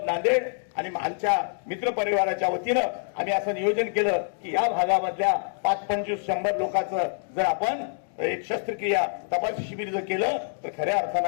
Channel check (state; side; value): silent; right; digital silence